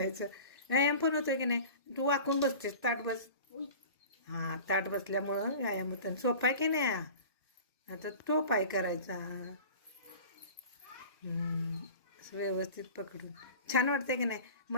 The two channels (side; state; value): both; inverted; correlation -0.39